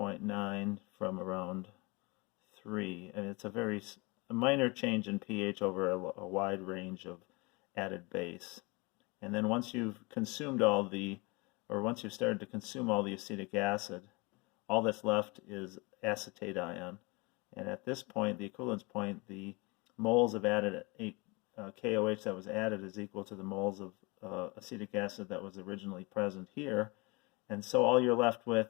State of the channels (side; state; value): right; quieter; 27.0 dB